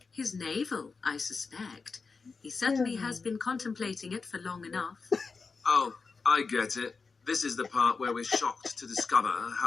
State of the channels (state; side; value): quieter; right; 4.6 dB